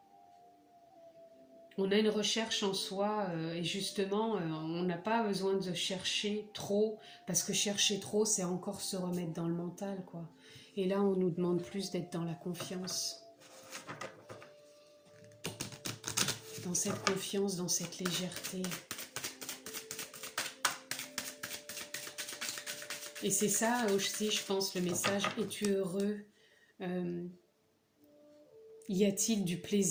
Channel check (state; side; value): identical; both; correlation 1.00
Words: On a une recherche en soi et justement, on n'a pas besoin de chercher trop, parce que chercher trop, c'est encore se remettre dans le mental, quoi. Et là, on nous demande plus d'être dans la confiance. Dans cette confiance, dans cette légèreté. Et c'est ça aussi, je pense, le message, es-tu heureux ? Y a-t-il du